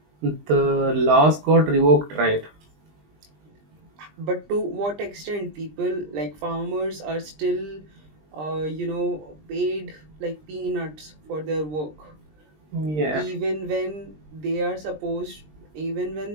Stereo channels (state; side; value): late; left; 20 ms